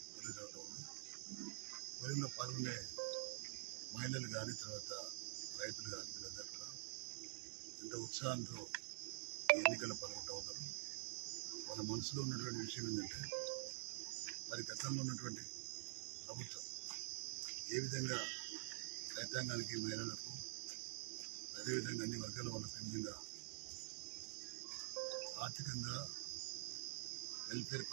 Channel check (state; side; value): silent; left; digital silence